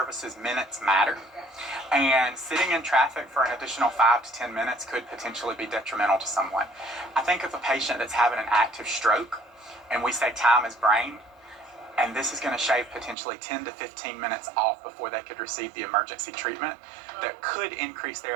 minutes matter. And sitting in traffic for an additional 5 to 10 minutes could potentially be detrimental to someone. I think of a patient that's having an active stroke, and we say time is brain, and this is going to shave potentially 10 to 15 minutes off before they could receive the emergency treatment that could increase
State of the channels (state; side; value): drops out; left; at 13.2 s